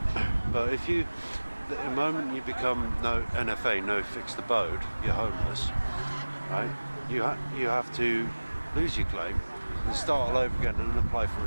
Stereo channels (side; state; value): both; inverted; correlation -1.00